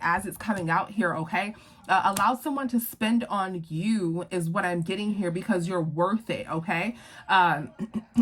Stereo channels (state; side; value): identical; both; correlation 1.00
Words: it's coming out here, okay? Allow someone to spend on you is what I'm getting here, because you're worth it, okay?